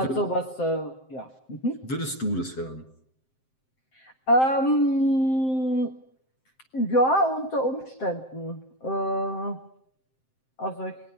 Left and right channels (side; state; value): right; late; 7.7 ms